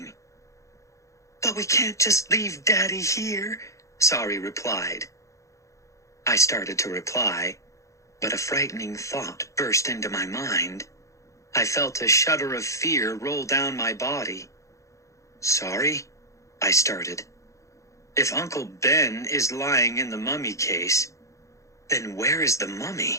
But we can't just leave Daddy here, Sorry replied. I started to reply, but a frightening thought burst into my mind. I felt a shudder of fear roll down my body. Sorry, I started. If Uncle Ben is lying in the mummy case, then where is the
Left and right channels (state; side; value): late; right; 0.15 ms